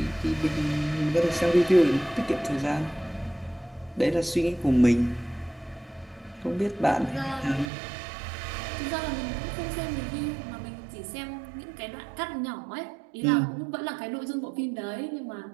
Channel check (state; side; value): drops out; left; at 7.7 s